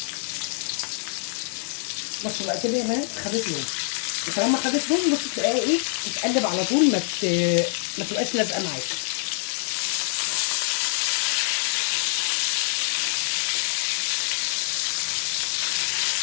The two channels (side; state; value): right; silent; 62 dB below the other